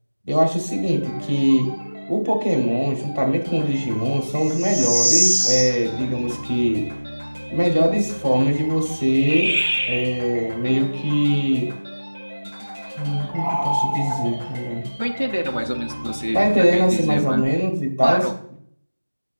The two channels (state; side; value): inverted; both; correlation -1.00